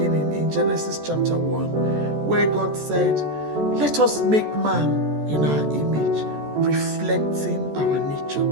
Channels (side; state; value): left; late; 14 ms